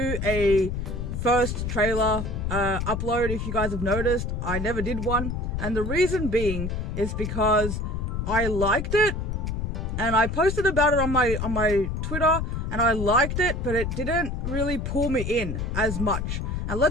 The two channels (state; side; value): noise; left; rumble, 3 dB below the sound